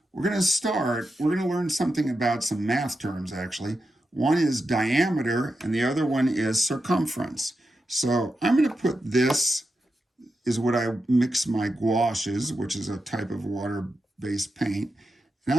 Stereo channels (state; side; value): normal; both; correlation 0.89